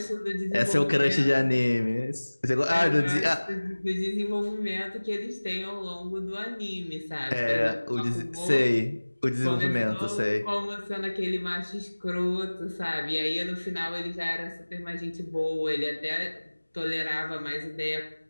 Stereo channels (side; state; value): both; inverted; correlation -1.00